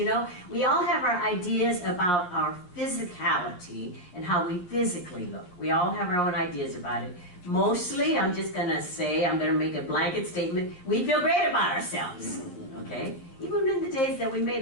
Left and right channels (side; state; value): right; late; 11 ms